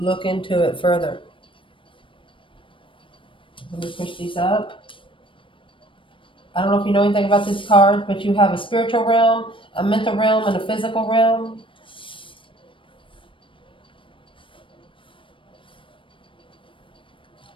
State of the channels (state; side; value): late; right; 0.25 ms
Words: into it further. Let me push these up. I don't know if you know anything about this card, but you have a spiritual realm, a mental realm, and a physical realm.